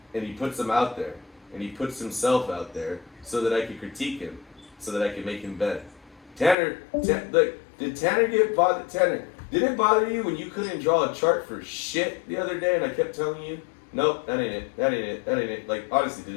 and he puts them out there, and he puts himself out there so that I can critique him, so that I can make him better. Did Tanner get bothered? Tanner, did it bother you when you couldn't draw a chart for shit the other day, and I kept telling you, nope, that ain't it, that ain't it, that ain't it. Like, honestly, did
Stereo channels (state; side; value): drops out; right; at 6.6 s